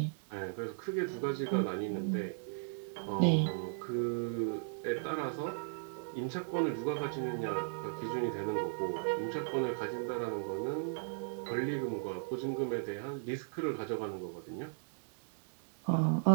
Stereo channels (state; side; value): silent; left; digital silence